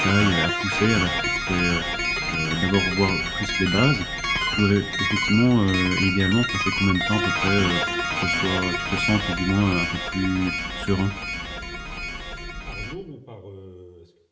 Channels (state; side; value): identical; both; correlation 1.00